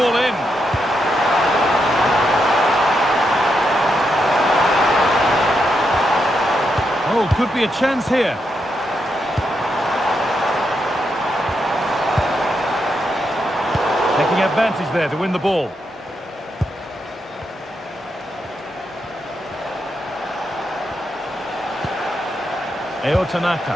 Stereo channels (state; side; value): normal; both; correlation 0.82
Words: in. Oh, could be a chance here. Taking advantage there to win the ball. Eo Tanaka.